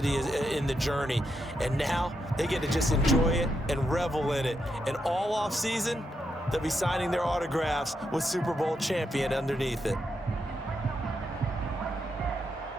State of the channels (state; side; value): normal; both; correlation 0.82